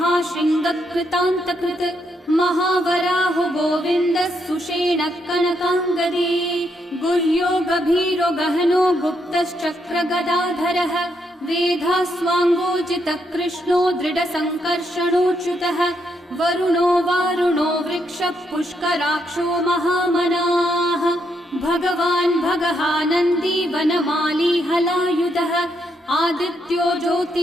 महावराहो गोविन्दः सुषेणः कनकाङ्गदी गुह्यो गभीरो गहनो गुप्तश्चक्रगदाधरः वेधास्वाङ्गोजितः कृष्णो दृढसङ्कर्षणोच्युतः वरुणो वारुणो वृक्षः पुष्कराक्षो महामनाः भगवान् भगहानन्दी वनमाली हलायुधः आदित्यो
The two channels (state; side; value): normal; both; correlation 0.78